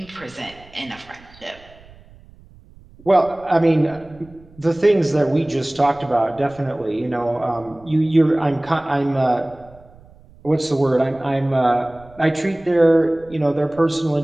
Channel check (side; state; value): right; noise; rumble, 25 dB below the sound